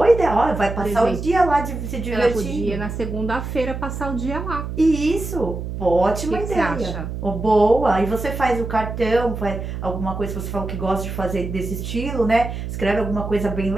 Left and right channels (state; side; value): noise; right; hum, 6 dB below the sound